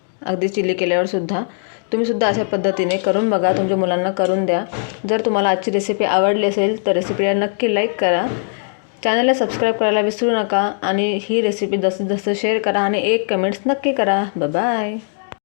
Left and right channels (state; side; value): silent; right; digital silence